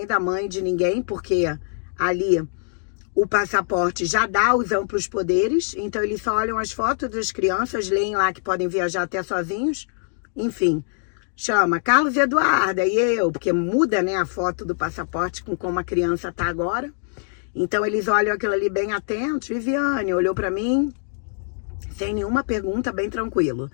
da mãe de ninguém, porque ali o passaporte já dá os amplos poderes, então eles só olham as fotos das crianças, leem lá que podem viajar até sozinhos, enfim. Chama Carlos Eduarda e eu, porque muda, né, a foto do passaporte com como a criança tá agora. Então eles olham aquilo ali bem atentos. Viviane olhou para mim sem nenhuma pergunta, bem tranquilo.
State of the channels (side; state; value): right; silent; digital silence